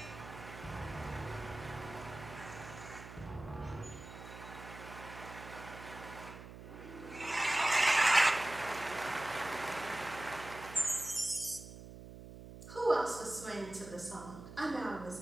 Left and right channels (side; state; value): right; noise; hum, 13 dB below the sound